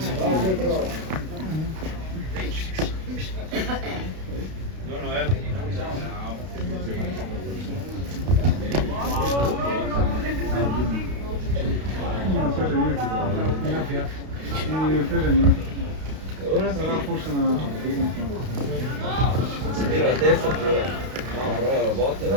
Ora sarà forse una... Tira la testa, tira. No, però la botta.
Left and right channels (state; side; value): late; left; 32 ms